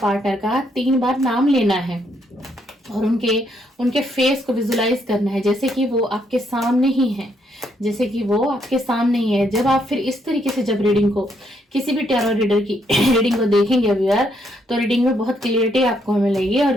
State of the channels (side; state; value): both; normal; correlation 0.74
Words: का 3 बार नाम लेना है और उनके फेस को विजुलाइज करना है जैसे कि वो आपके सामने ही है, जैसे कि वो आपके सामने ही है। जब आप फिर इस तरीके से जब रीडिंग को किसी भी टैरो रीडर की रीडिंग को देखेंगे व्यूअर, तो रीडिंग में बहुत क्लियरिटी आपको मिलेगी और